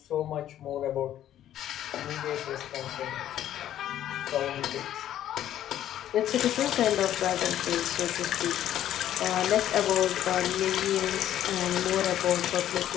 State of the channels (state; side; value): quieter; right; 11.7 dB